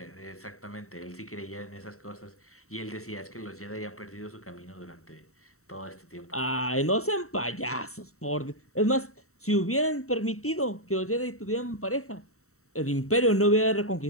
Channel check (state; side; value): late; right; 0.64 ms